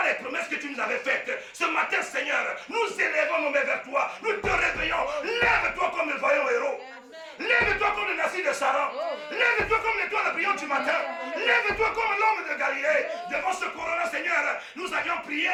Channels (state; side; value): identical; both; correlation 1.00